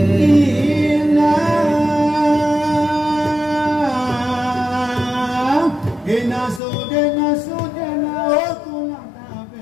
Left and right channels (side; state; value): right; drops out; at 6.6 s